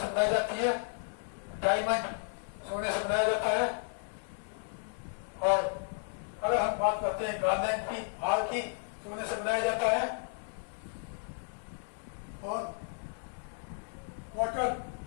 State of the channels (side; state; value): right; silent; digital silence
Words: बनाई जाती है, डायमंड सोने से बनाया जाता है। और अगर हम बात करते हैं गार्लैंड की, हार की, सोने से बनाया जाता है। और कॉटन,